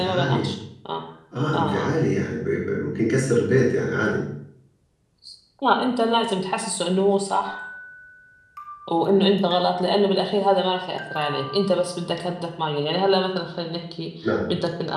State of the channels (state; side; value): identical; both; correlation 1.00